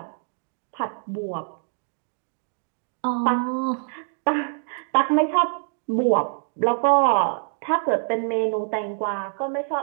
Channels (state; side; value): silent; left; digital silence